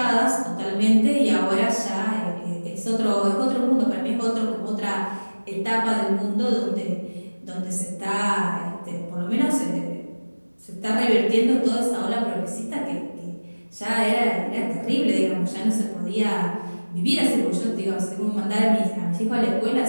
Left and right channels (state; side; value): inverted; both; correlation -1.00